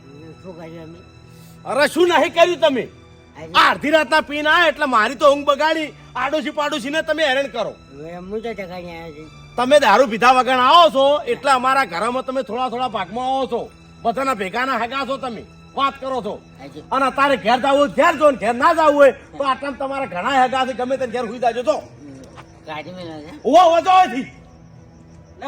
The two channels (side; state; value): both; identical; correlation 1.00